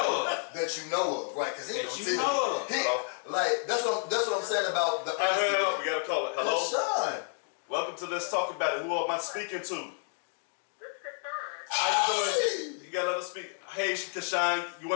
of. that you know of, right? Because he That don't you tell know of. like that's what I'm saying about the honesty. We gotta call it. Hello. Kashawn. Welcome to Let's Talk About It. Who am I speaking to? How you doing? You gotta let us speak. Hey, Kashawn, you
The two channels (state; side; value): silent; right; 57 dB below the other